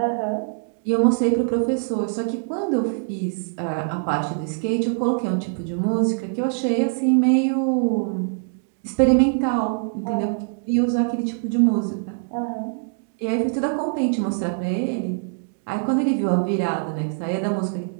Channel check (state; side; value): silent; left; digital silence